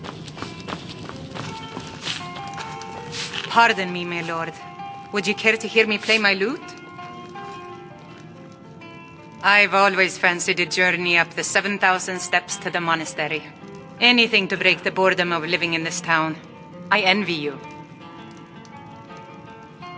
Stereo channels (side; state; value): both; identical; correlation 1.00